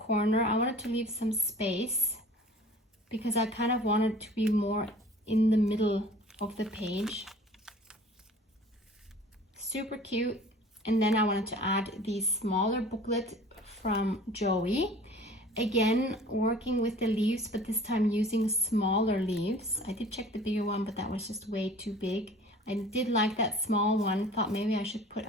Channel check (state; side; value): normal; both; correlation 0.46